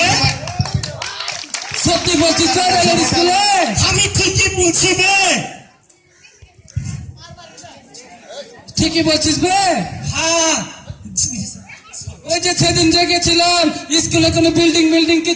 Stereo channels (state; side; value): identical; both; correlation 1.00